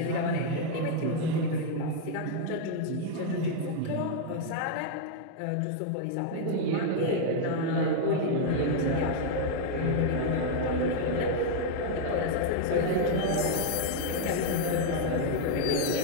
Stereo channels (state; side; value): different; both; correlation 0.00